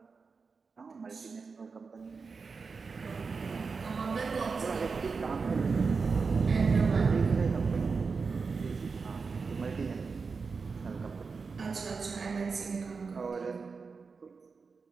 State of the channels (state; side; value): quieter; left; 4.9 dB